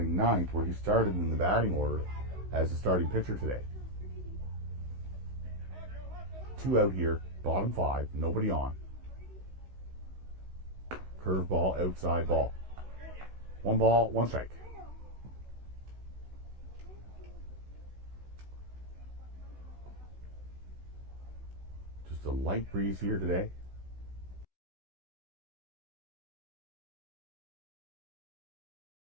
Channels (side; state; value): left; late; 16 ms